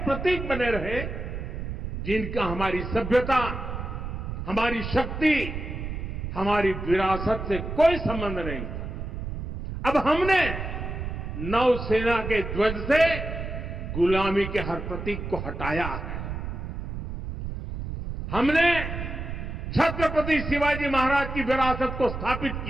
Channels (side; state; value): right; noise; rumble, 6 dB below the sound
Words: प्रतीक बने रहे जिनका हमारी सभ्यता, हमारी शक्ति, हमारी विरासत से कोई संबंध नहीं था। अब हमने नौसेना के ध्वज से गुलामी के हर प्रतीक को हटाया है। हमने छत्रपति शिवाजी महाराज की विरासत को स्थापित